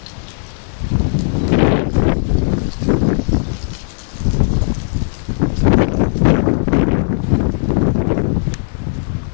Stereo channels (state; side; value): silent; right; digital silence